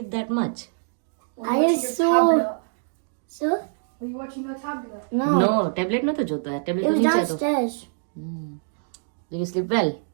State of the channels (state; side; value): silent; left; digital silence